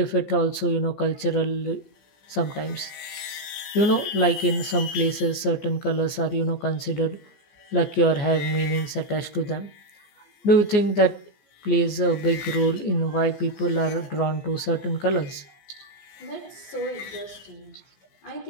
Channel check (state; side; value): late; right; 14 ms